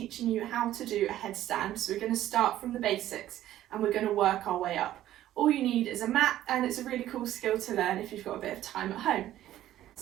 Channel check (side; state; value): left; quieter; 13.2 dB